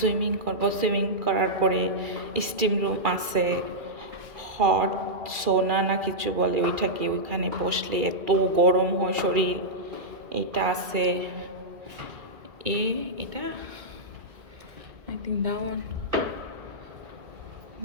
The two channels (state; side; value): late; left; 2.4 ms